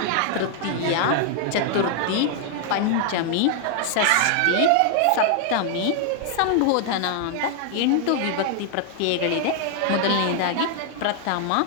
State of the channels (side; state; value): both; different; correlation 0.00